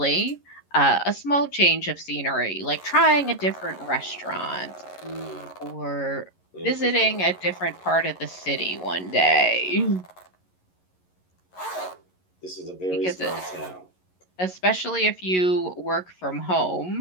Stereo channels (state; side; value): late; right; 11 ms